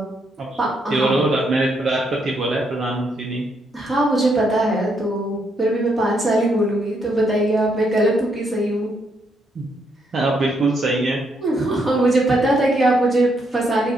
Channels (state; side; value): normal; both; correlation 0.76